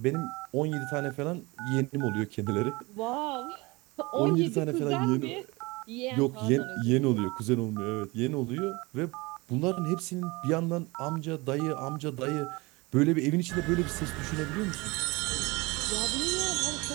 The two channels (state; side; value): quieter; left; 24.2 dB